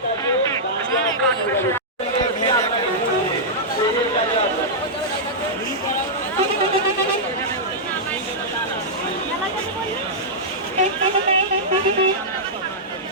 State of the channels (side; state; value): both; normal; correlation -0.10